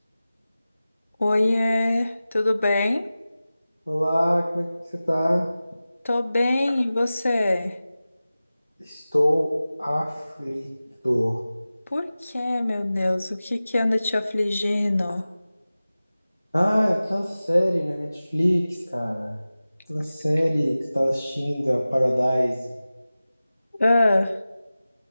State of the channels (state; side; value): inverted; both; correlation -0.96